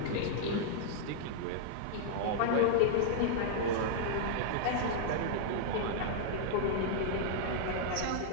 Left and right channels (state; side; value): different; both; correlation -0.01